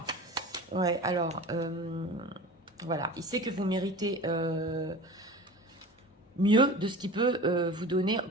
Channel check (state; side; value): normal; both; correlation 0.36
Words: Ouais, alors, voilà, il sait que vous méritez mieux de ce qu'il peut vous donner